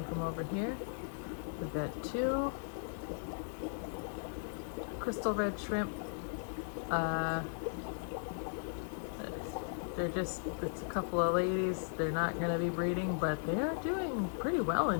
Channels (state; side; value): silent; right; 53 dB below the other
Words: from over here. We've got two crystal red shrimp. It's a couple of ladies. They're not going to be breeding, but they are doing pretty well